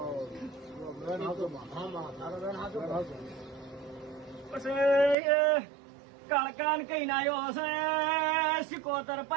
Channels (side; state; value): left; drops out; at 5.2 s